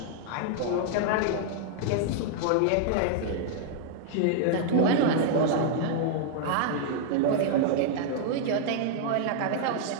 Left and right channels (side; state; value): both; different; correlation -0.01